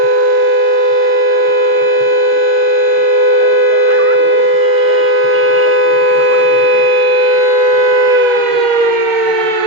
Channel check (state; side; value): late; left; 6.6 ms